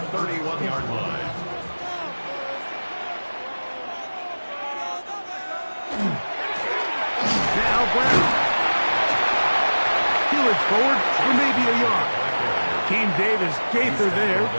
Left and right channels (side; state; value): both; inverted; correlation -1.00